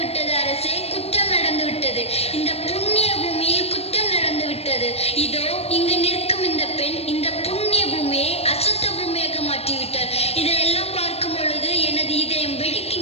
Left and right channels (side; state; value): right; late; 0.29 ms